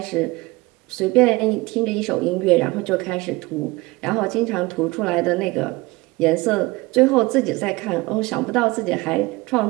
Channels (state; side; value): quieter; left; 22.2 dB